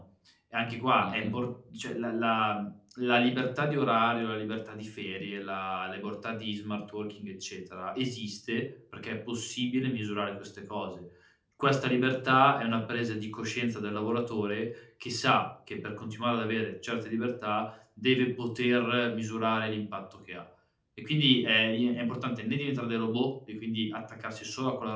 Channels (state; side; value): identical; both; correlation 1.00